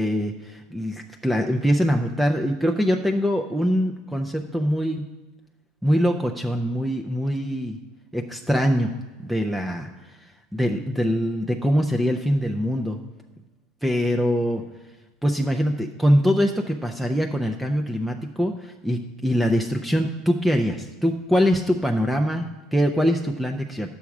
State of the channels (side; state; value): both; normal; correlation 0.89